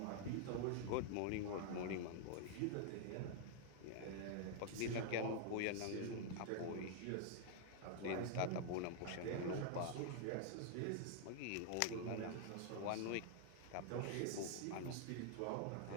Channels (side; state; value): both; different; correlation 0.00